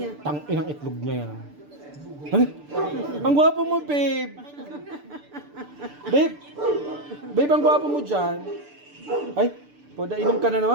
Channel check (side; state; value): left; late; 6.8 ms